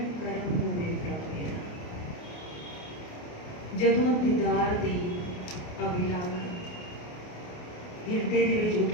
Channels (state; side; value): late; right; 28 ms